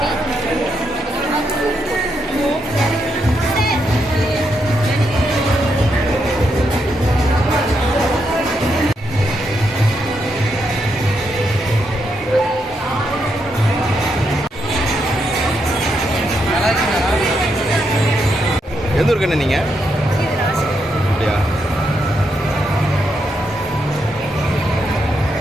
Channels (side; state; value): both; normal; correlation 0.80